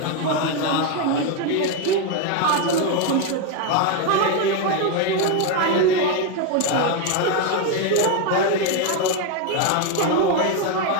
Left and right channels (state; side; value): different; both; correlation 0.02